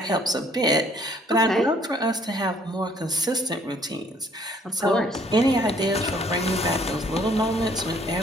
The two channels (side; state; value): both; normal; correlation 0.61